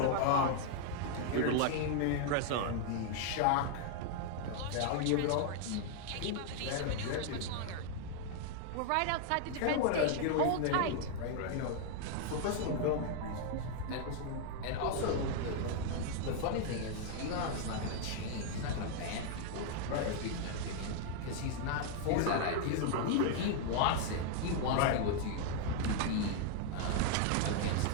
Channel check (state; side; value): different; both; correlation 0.00